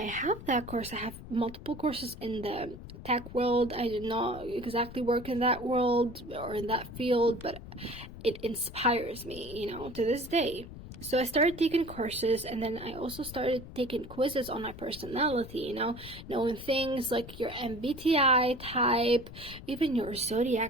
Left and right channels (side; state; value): left; noise; rumble, 14 dB below the sound